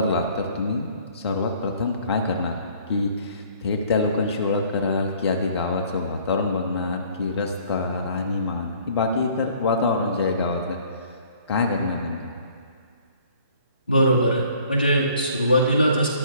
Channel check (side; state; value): both; inverted; correlation -0.57